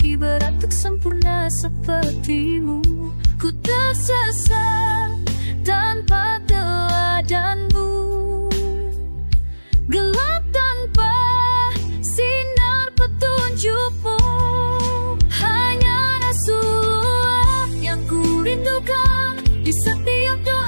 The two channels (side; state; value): both; inverted; correlation -1.00